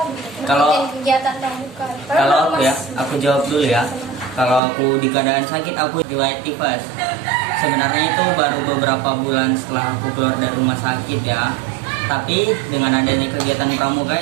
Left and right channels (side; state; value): left; drops out; at 4.6 s